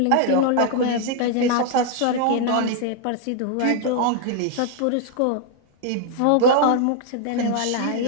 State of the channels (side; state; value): both; different; correlation 0.00